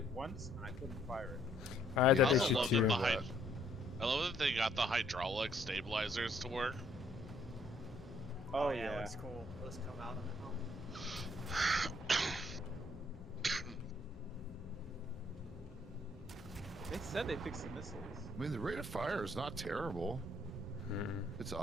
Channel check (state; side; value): normal; both; correlation 0.66